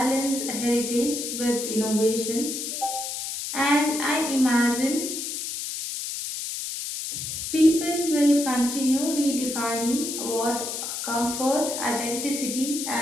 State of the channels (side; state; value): left; noise; hiss, 5 dB below the sound